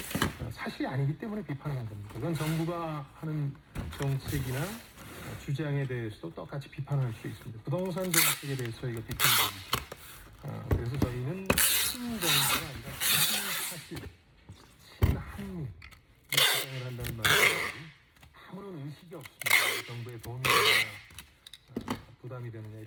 사실이 아니기 때문에 비판하는 겁니다. 그건 정부가 하는 정책이나 주장에 대해서도 똑같이 비판할 수 있습니다. 부동산 정책에 대해서 저희가 비판합니다. 그래서 저희는 친정부가 아니라 친사실, 친한미 주장을 한다는 말이 아무런 의식이 없습니다. 정부의 돈이 부담이 되느냐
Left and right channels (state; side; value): identical; both; correlation 1.00